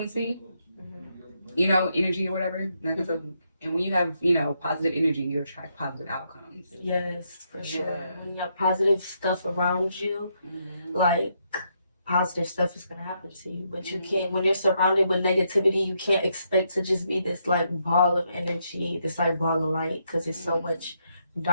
energy or whatever. And when you have, positive energy, you attract positive outcomes. Yes, for sure. When you have positive stuff around you, like positive stuff is gonna happen to you. But you can't, when you're surrounded with negativity, you can't expect to just be this like ball of energy, this like ball of light, because there's so much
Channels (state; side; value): inverted; both; correlation -0.78